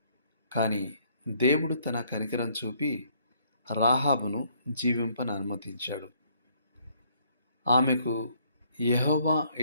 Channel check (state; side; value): inverted; both; correlation -0.65